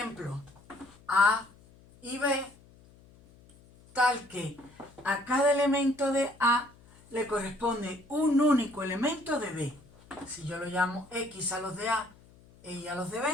A y B, tal que a cada elemento de A le corresponde un único elemento de B. Si yo lo llamo X a los de A e Y a los de B,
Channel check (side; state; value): left; noise; hum, 26 dB below the sound